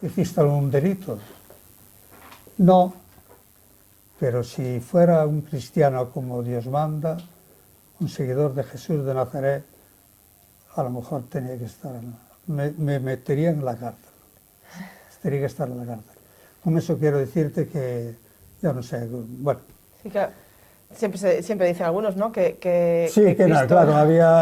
¿hiciste algún delito? No, pero si fuera un cristiano como Dios manda, un seguidor de Jesús de Nazaret, a lo mejor tenía que estar, me metería en la cárcel. Tenía que estar en la cárcel. Con eso quiero decirte que, ya no sé, bueno. Sí, que siempre dicen algunos, ¿no? Sí, que Cristo, no, claro,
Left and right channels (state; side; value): identical; both; correlation 1.00